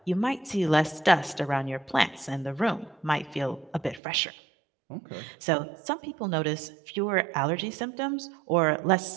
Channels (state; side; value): drops out; left; at 4.0 s